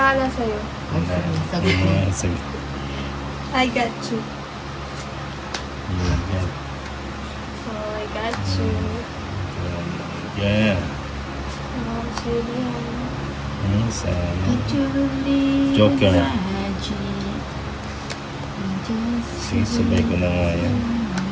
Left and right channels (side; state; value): both; identical; correlation 1.00